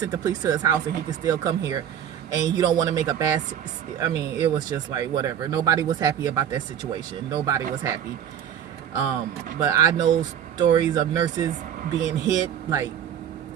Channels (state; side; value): quieter; left; 9.3 dB